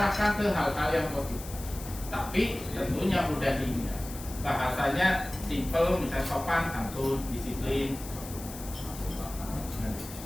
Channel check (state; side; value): noise; left; hiss, 13 dB below the sound